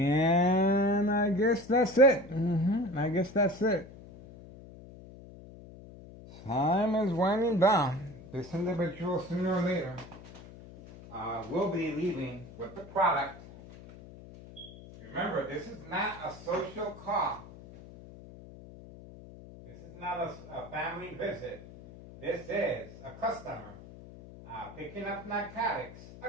I guess that's it. I guess that's it. Time is winding down. This individual, sooner or later, will be leaving with the product. Remember, this is not a social call. This is not a family visit. This is a customer picking up narcotics.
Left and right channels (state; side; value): noise; left; hum, 17 dB below the sound